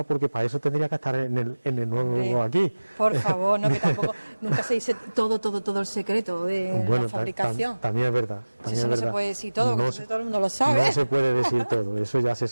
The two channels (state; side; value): inverted; both; correlation -1.00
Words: porque para eso tendría que estar en el nuevo aquí. Por favor, no, que tampoco nunca se dice todo el secreto de la fabricación. También es verdad. Eso no se puede decir todo, no todo el mundo lo sabe. No se puede decir todo, eso ya se